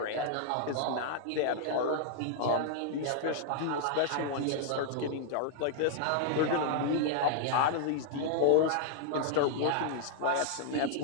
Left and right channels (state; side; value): different; both; correlation -0.01